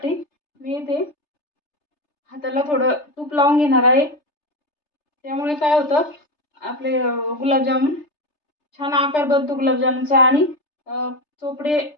मी इथे हाताला थोडं तूप लावून घेणार आहे. त्यामुळे काय होतं, आपले गुलाबजामुन छान आकार बनतो गुलाबजामुनचा आणि चोपडे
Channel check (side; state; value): right; late; 3.3 ms